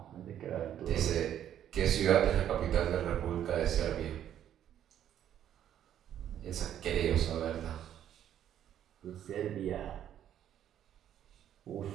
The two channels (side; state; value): left; quieter; 10.5 dB